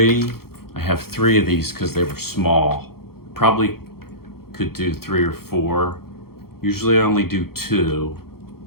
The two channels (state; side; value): late; right; 0.94 ms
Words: I have 3 of these because they were small. Probably could do 3 or 4. Usually I only do 2